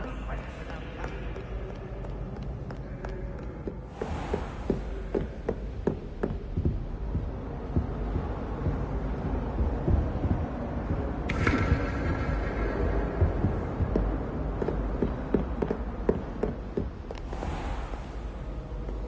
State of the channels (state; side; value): identical; both; correlation 1.00